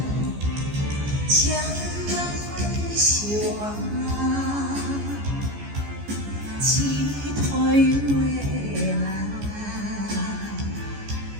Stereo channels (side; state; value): left; late; 14 ms